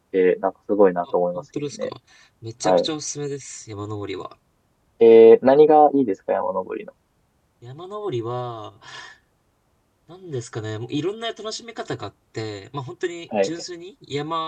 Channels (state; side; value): identical; both; correlation 1.00